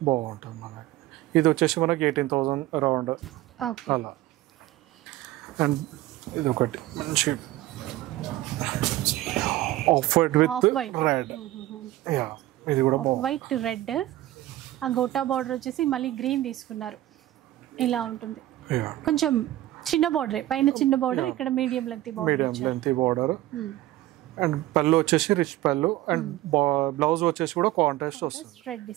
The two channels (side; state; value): left; quieter; 15.6 dB